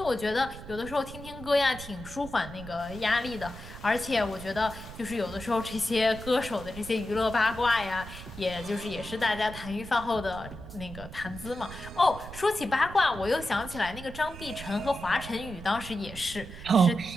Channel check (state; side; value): noise; right; rumble, 13 dB below the sound